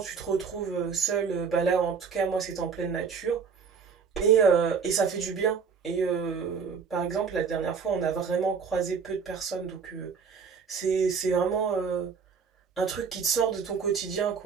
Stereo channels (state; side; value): quieter; left; 6.0 dB